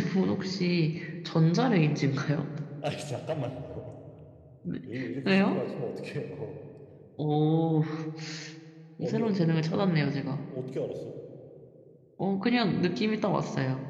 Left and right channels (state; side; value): identical; both; correlation 1.00